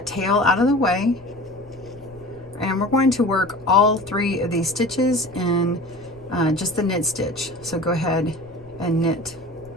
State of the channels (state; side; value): noise; left; rumble, 24 dB below the sound